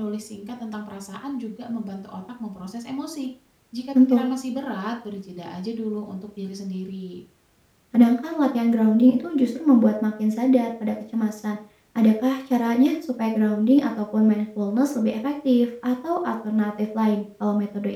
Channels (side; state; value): both; identical; correlation 1.00